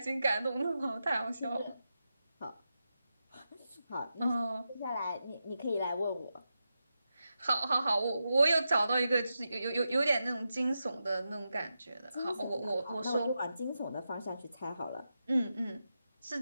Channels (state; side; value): inverted; both; correlation -0.89